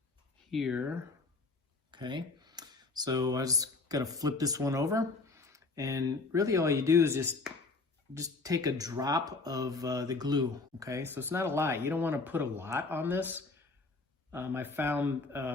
here. Okay, so I just got to flip this one over, and really all you do is just take a drop of the glue. Okay, so it's not a lot. You don't want to put a lot on this. I found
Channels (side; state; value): right; quieter; 3.7 dB